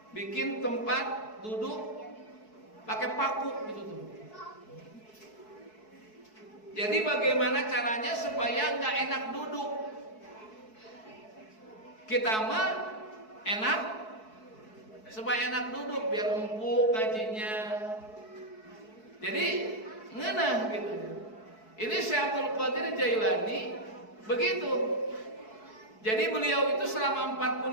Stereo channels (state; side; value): late; right; 4.6 ms